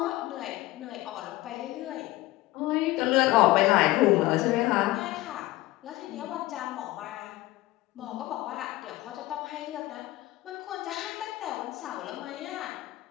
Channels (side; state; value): right; quieter; 18.0 dB